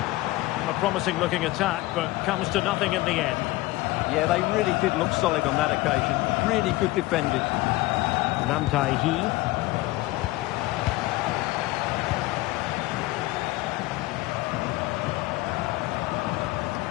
A promising looking attack, but comes to nothing in the end. Yeah, they really did look solid on that occasion. Really good defending. Nam Tai-hee.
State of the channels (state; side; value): quieter; right; 19.4 dB